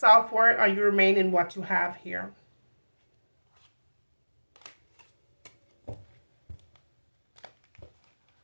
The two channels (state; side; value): inverted; both; correlation -1.00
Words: or you remain in what you have here.